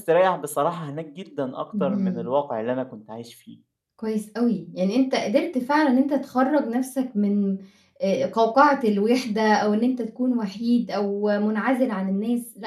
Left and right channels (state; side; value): identical; both; correlation 1.00